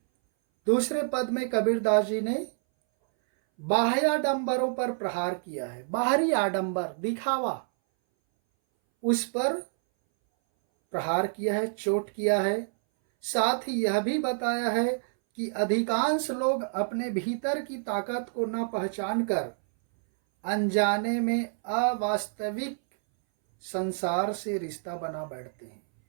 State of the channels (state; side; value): silent; left; 59 dB below the other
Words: दूसरे पद में कबीरदास जी ने बाह्य आडंबरों पर प्रहार किया है। बाहरी आडंबर, दिखावा, उस पर प्रहार किया है, चोट किया है। साथ ही यह भी बताया है कि अधिकांश लोग अपने भीतर की ताकत को न पहचान कर अनजाने में अवास्तविक संसार से रिश्ता बना बैठते हैं।